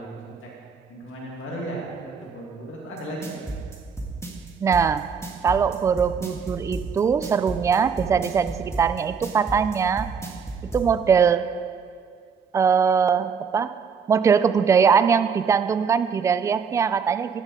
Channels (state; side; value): quieter; left; 6.1 dB